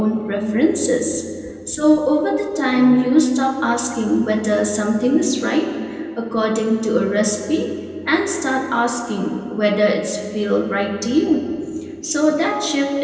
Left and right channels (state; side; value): identical; both; correlation 1.00